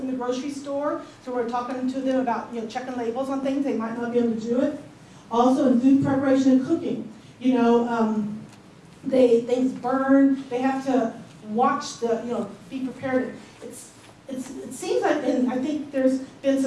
the grocery store. So we're talking to them about checking labels on things. They might not be able to do it. Also in food preparation and cooking. Things burn. They have to watch the, be prepared. It seems like, and I think there's been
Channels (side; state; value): both; identical; correlation 1.00